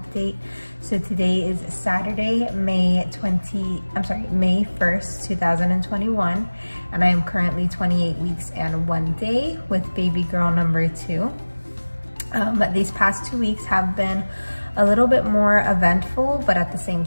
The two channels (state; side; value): inverted; both; correlation -1.00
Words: date. So today is Saturday, May 1st, 2021, and I am currently 28 weeks and 1 day with baby girl number 2. These past 2 weeks have been a little bit more eventful, but at the same